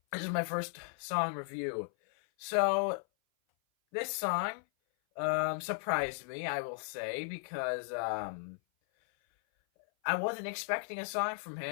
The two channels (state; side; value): silent; right; 54 dB below the other